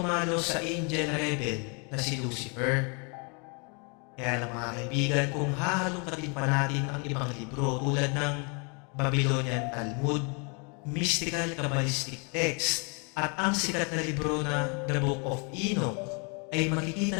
sa angel rebel na si Lucifer. Kaya lang mga kaibigan, kung hahalongkatin pa natin ang ibang libro tulad ng Babylonian Talmud, mystical Kabbalistic text, at ang sikat na libro na The Book of Enoch, ay makikita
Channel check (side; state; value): right; quieter; 34.5 dB